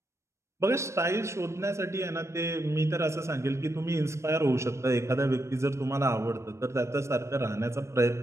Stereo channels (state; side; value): late; left; 0.13 ms